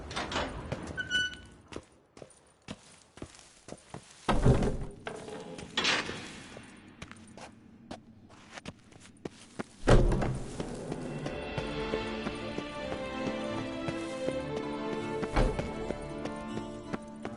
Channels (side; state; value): both; identical; correlation 1.00